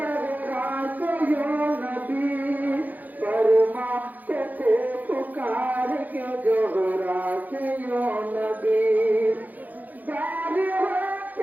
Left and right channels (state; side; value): late; left; 0.082 ms